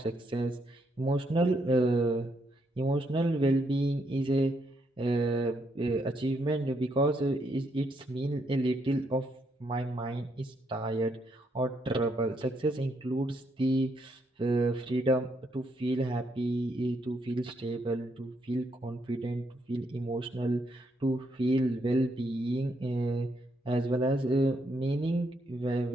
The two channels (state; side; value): normal; both; correlation 0.76